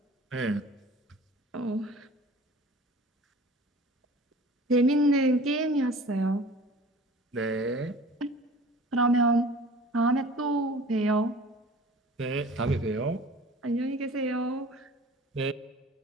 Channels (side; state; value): both; normal; correlation 0.44